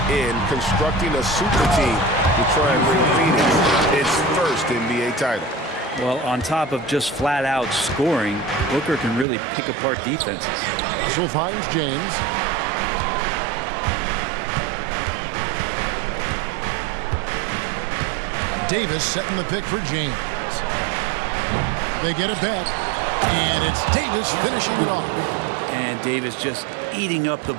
in, constructing a super team to try and bring Phoenix its first NBA title. Well, on top of just flat-out scoring, Booker can really pick apart defenses. Russell finds James. Davis setting the pick for James. They get it back, and it's Davis finishing it off. And Davis just eating up the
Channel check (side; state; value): left; drops out; at 9.2 s